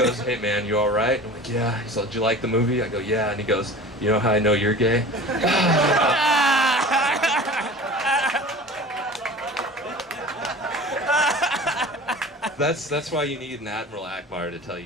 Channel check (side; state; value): both; normal; correlation 0.38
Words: hey man, you all right? I'm like, yeah. He's like, did you like the movie? I go, yeah. And he goes, you know how I know you're gay? That's why you need an Admiral Akbar to tell